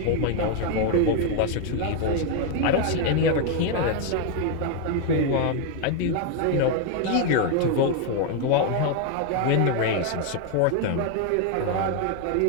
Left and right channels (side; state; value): both; different; correlation 0.01